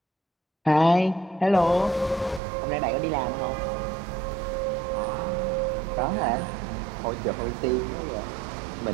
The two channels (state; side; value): drops out; left; at 2.4 s